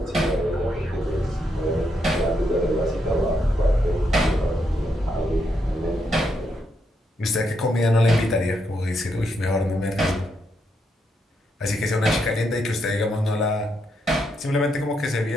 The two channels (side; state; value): both; normal; correlation 0.79